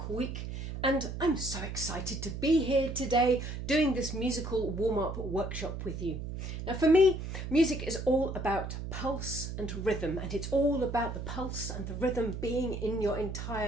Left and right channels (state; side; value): noise; right; hum, 6 dB below the sound